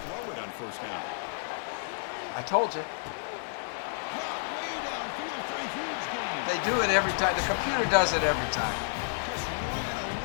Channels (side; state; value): right; silent; digital silence